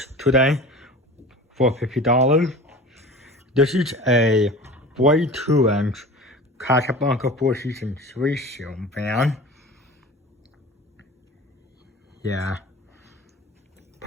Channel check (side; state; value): both; normal; correlation 0.38